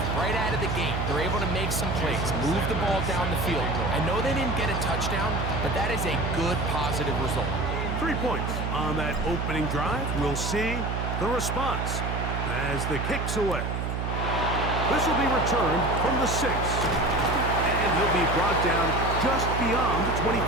right out of the gate. They're able to make some plays, move the ball down the field. I know they didn't get a touchdown, but that is a good, positive result. 3 points on that opening drive. We'll see the response as the kick's away. This will be returned from the 6. And he'll be brought down just beyond the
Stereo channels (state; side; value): noise; right; hum, 2 dB below the sound